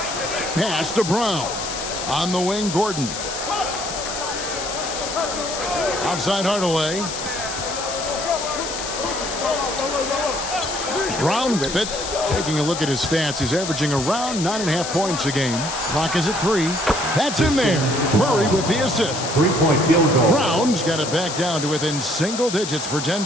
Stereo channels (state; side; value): noise; left; hiss, 6 dB below the sound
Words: Pass to Brown. On the wing, Gordon. Outside Hardaway. Brown with it. Taking a look at his stats, he's averaging around 9.5 points a game. Clock is at 3. That's in there. Murray with the assist. 3-point field goal. Brown's got it back down to within single digits for